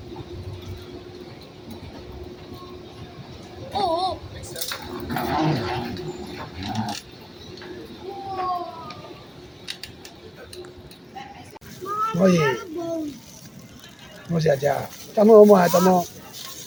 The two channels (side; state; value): both; identical; correlation 1.00